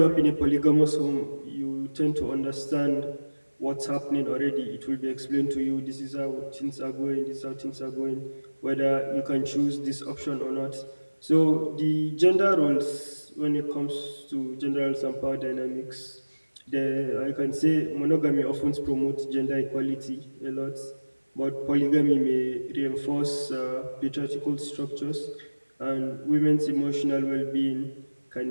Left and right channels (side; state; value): both; inverted; correlation -1.00